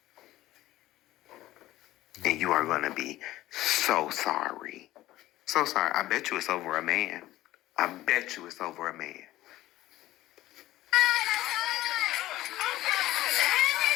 And you are gonna be so sorry. So sorry. I bet you it's over a man. I bet you it's over a man.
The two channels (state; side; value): quieter; right; 15.8 dB